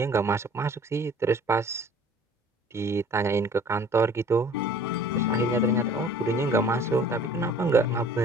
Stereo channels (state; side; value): normal; both; correlation 0.51